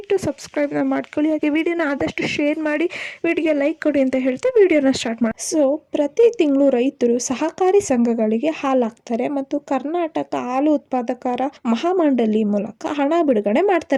ಸಬ್ಸ್ಕ್ರೈಬ್ನ ಮಾಡ್ಕೊಳ್ಳಿ. ಹಾಗೆ ವಿಡಿಯೋನ ಆದಷ್ಟು ಶೇರ್ ಮಾಡಿ, ವಿಡಿಯೋಗೆ ಲೈಕ್ ಕೊಡಿ ಅಂತ ಹೇಳ್ತಾ ವಿಡಿಯೋನ ಸ್ಟಾರ್ಟ್ ಮಾಡಿ. ಸೊ ಪ್ರತಿ ತಿಂಗಳು ರೈತರು ಸಹಕಾರಿ ಸಂಘಗಳಿಗೆ ಹಾಲು ಹಾಕ್ತಾರೆ ಮತ್ತು ಕರ್ನಾಟಕ ಹಾಲು ಉತ್ಪಾದಕರ ಮಹಾಮಂಡಳಿ ಮೂಲಕ ಹಣ ಬಿಡುಗಡೆ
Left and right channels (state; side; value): identical; both; correlation 1.00